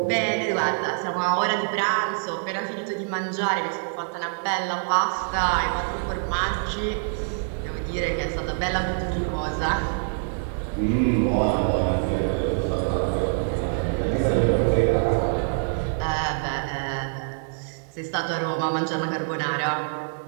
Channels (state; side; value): silent; left; 62 dB below the other